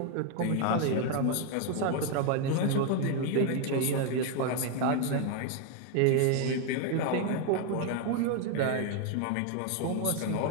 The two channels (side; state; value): both; different; correlation 0.01